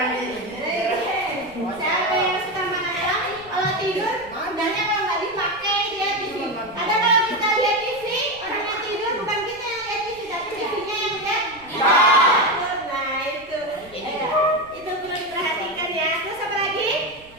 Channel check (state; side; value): noise; right; rumble, 24 dB below the sound